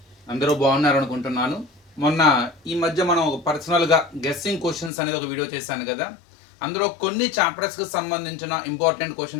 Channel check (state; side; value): drops out; right; at 4.9 s